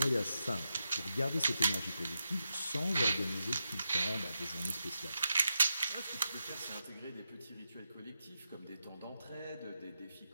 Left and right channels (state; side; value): inverted; both; correlation -0.87